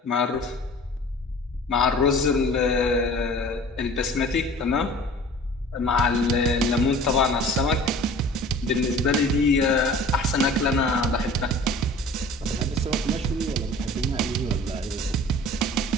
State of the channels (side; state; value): both; normal; correlation 0.44